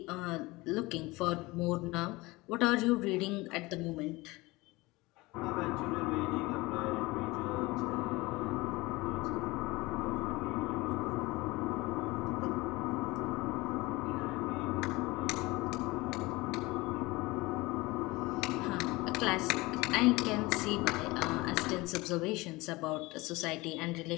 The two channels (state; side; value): quieter; right; 21.8 dB